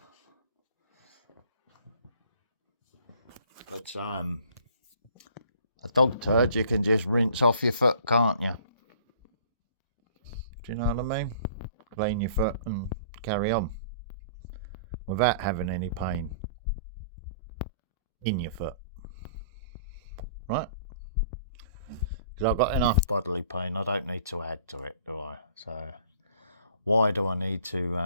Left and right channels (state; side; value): inverted; both; correlation -0.53